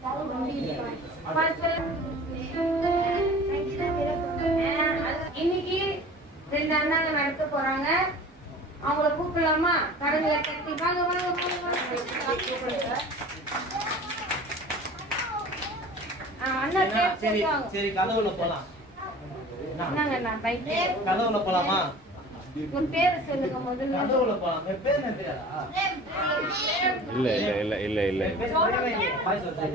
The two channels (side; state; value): both; normal; correlation 0.42